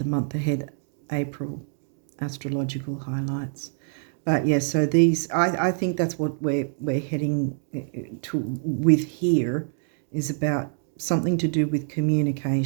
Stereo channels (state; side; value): silent; left; digital silence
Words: month ahead, April, astrological highlights. But yeah, so these, I think that's what we're heading to with here, is about something to do with